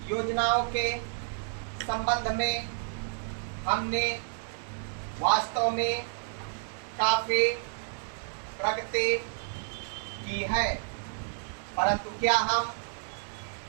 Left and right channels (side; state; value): left; silent; 57 dB below the other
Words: योजनाओं के संबंध में हमने वास्तव में काफी प्रगति की है, परंतु क्या हम